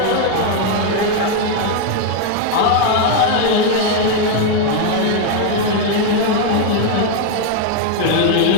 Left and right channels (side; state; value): both; different; correlation 0.01